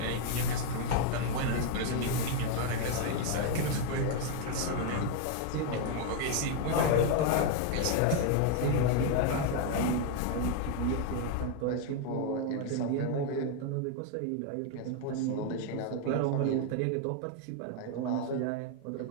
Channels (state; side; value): different; both; correlation 0.00